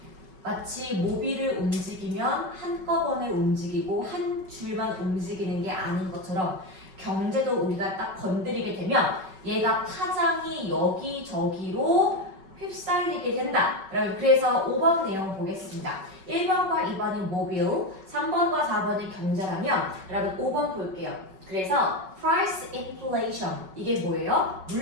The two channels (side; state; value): left; late; 5.3 ms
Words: 마치 모비를 움직이면 한꺼번에 움직이고 한 줄만 움직이는 게 아닌 것처럼 경제도 우리가 딱 건드리게 되면 얘가 파장이 여기저기로 휩쓸리게 된다. 그래서 5번 내용 보겠습니다. 1번과 2번이 모빌, 3번과 4번이 경제라면 여러분 5번 볼게요. 그래서 price inflation 이게 뭐예요?